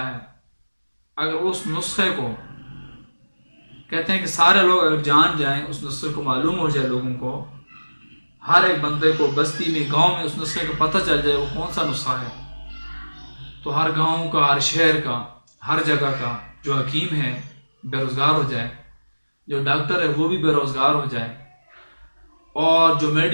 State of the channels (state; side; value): inverted; both; correlation -1.00